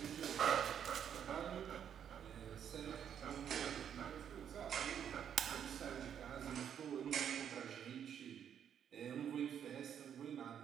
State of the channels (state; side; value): quieter; left; 8.8 dB